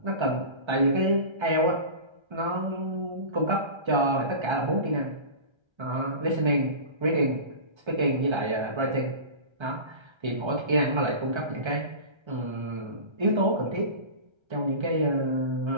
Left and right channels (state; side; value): late; left; 1.3 ms